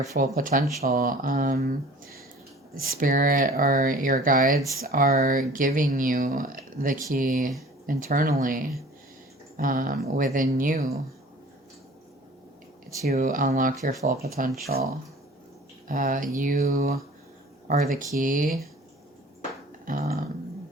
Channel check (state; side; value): normal; both; correlation 0.46